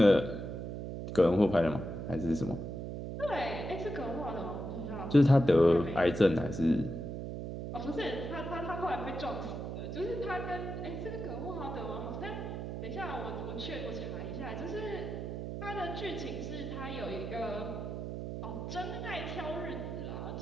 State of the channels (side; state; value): right; noise; hum, 5 dB below the sound